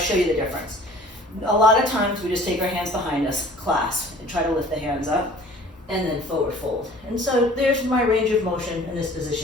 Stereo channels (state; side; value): normal; both; correlation 0.49